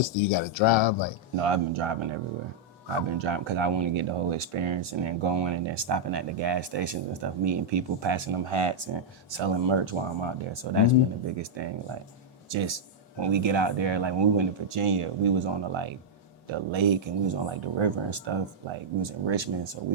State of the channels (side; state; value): both; normal; correlation -0.05